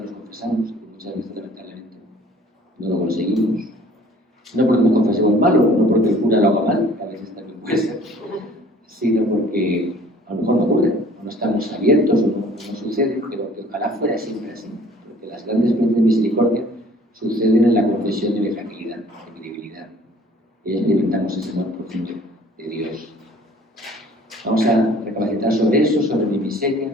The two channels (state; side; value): normal; both; correlation 0.53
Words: nos confesamos, que muchas veces lamentablemente no lo conseguimos. No porque nos confesemos malo, no porque el cura lo haga mal, que a veces también puede ser, sino porque a lo mejor no ocurre, o no estamos abiertos, o no sucede, pero que ojalá fuera siempre así, porque las grandes experiencias de misericordia suceden en la confesión de mi fragilidad, de mi debilidad, y experimentamos ese amor profundo de Dios. Vamos a recapacitar sobre eso, sobre mi miseria